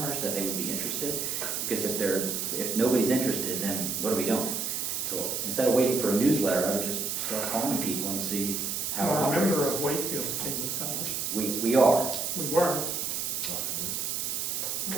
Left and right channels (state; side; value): noise; right; hiss, 1 dB below the sound